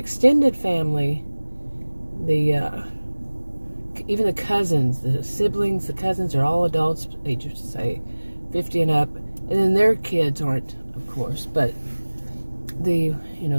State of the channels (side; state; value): both; inverted; correlation -1.00